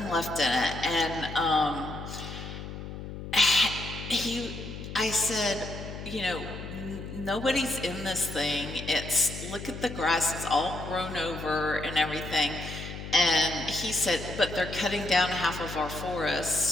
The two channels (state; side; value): noise; left; hum, 9 dB below the sound